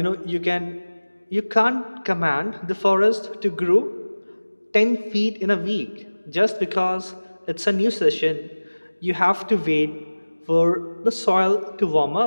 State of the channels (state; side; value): inverted; both; correlation -1.00